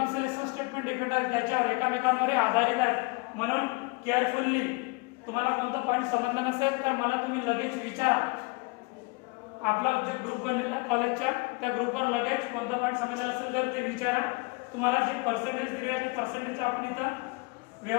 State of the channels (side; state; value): right; quieter; 28.1 dB